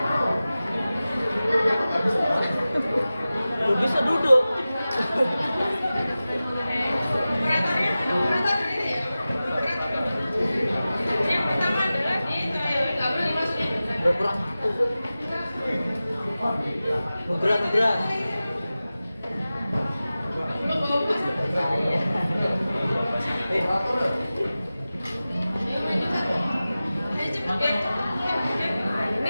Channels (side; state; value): both; inverted; correlation -0.95